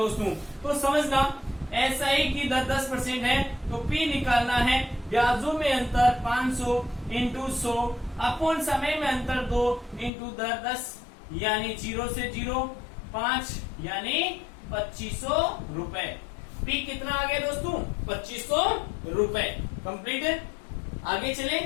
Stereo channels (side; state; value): right; drops out; at 10.1 s